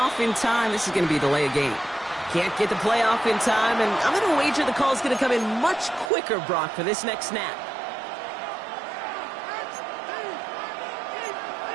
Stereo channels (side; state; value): left; drops out; at 6.1 s